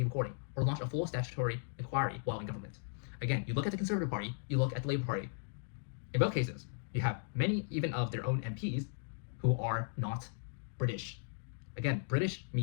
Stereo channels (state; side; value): silent; right; digital silence